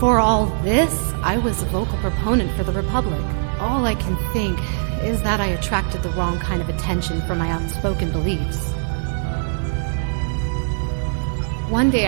all this, I was a vocal proponent for the Republic. All I can think is that I attracted the wrong kind of attention for my outspoken beliefs. One day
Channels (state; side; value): silent; left; 65 dB below the other